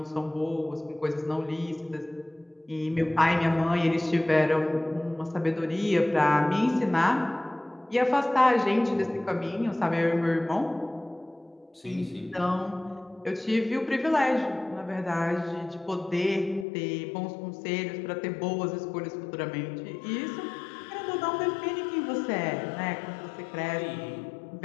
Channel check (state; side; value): drops out; right; at 16.7 s